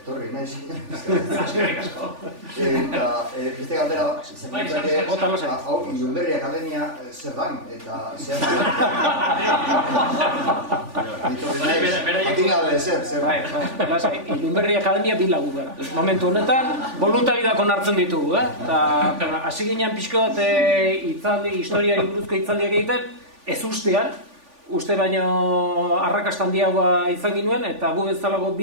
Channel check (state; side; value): late; left; 3.5 ms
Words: etorri naiz. Eskerrik asko. Eta beste galdera, hau Ilunberri Akademia zer dan, eta zehaztu. Atin gabe zer. Ilunberri Akademia bi lagu gara. Momentu honetan, voluntariak onartzen ditugu, eta hasi ginen pixko bat historiari buruzko hitzaldiak egiten, ez ustean, uste baino arrakasta handiagoa izan ginuen, eta gu bezalago